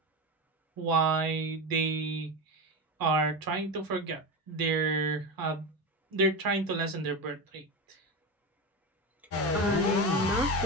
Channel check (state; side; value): normal; both; correlation 0.19